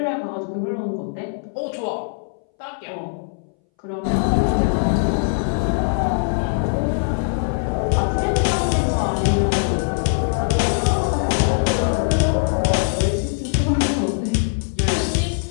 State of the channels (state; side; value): silent; right; 62 dB below the other